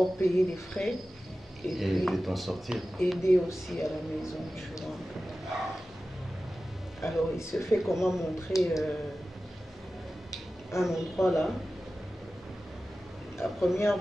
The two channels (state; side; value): normal; both; correlation 0.95